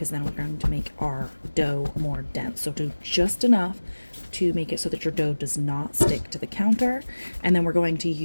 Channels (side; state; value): both; inverted; correlation -1.00